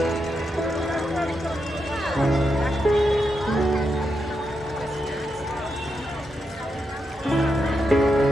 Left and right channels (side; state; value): both; normal; correlation 0.84